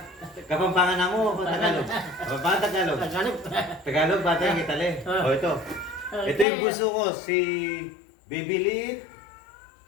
Kapampangan na mo, Tagalog. Kapampangan Tagalog. Tagalog. Tagalog, bata yung Itali. Ah. O ito. Okay. Ito yung buso ko, si Baby Lit,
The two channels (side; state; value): right; drops out; at 6.5 s